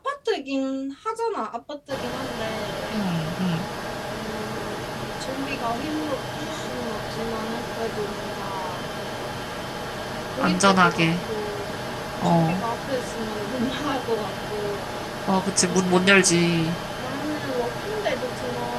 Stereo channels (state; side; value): identical; both; correlation 1.00